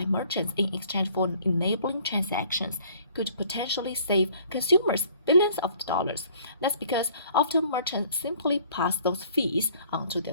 merchants in exchange for enabling transactions, could potentially save consumers billions of dollars. That's because often merchants simply pass those fees on to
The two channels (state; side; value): inverted; both; correlation -0.57